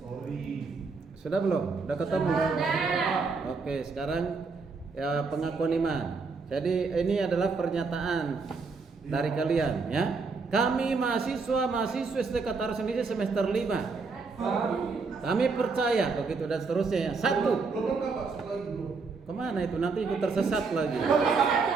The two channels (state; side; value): quieter; left; 4.5 dB